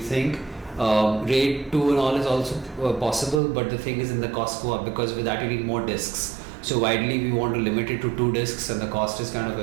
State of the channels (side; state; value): left; drops out; at 3.4 s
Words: RAID 2 and all is also possible, but the thing is, in the cost go up, because with that you need more disks. So widely we want to limit it to 2 disks, and the cost is kind of